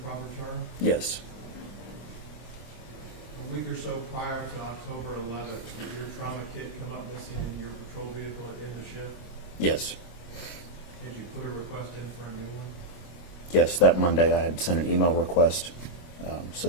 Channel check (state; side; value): late; right; 25 ms